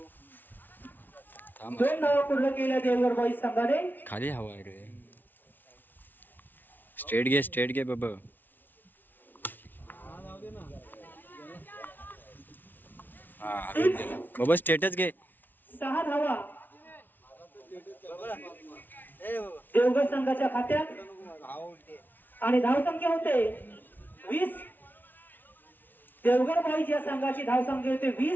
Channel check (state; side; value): late; right; 0.088 ms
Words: 2 धावा पूर्ण केल्या देवगड बॉईज संघाने. खाली हवा आहे रे. स्ट्रेट घे बाबा. बाबा स्टेटच घे. 6 धावा देवगड संघाच्या खात्यात आणि धावसंख्या होते 20. देवगड बॉईज या संघाची धावसंख्या होते